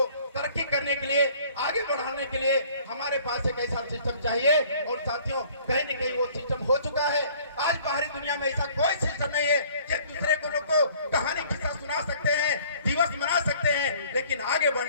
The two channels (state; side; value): inverted; both; correlation -0.54